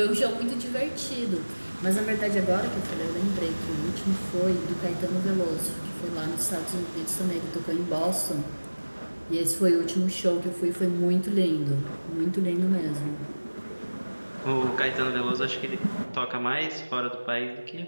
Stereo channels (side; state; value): both; inverted; correlation -1.00